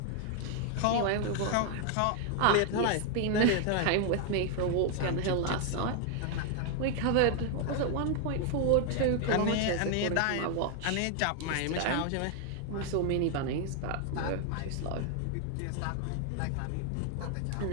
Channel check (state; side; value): different; both; correlation 0.00